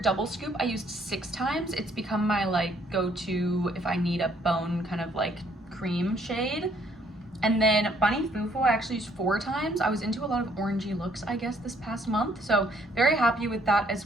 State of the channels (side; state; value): both; normal; correlation 0.65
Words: Scoop, I used 6 times. It's become my like go-to if I need a bone kind of like cream shade. And then Bunny Fufu I actually used 4 times. I was into a lot of orangey looks, I guess, this past month. So very happy with that